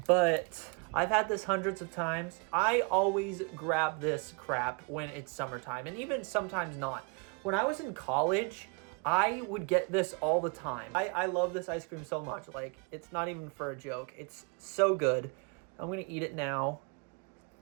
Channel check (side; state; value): left; quieter; 33.6 dB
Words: but I've had this hundreds of times. I always grab this crap when it's summertime, and even sometimes not. When I was in college, I would get this all the time. I love this ice cream so much. Like, it's not even for a joke. It's so good. I'm gonna eat it now.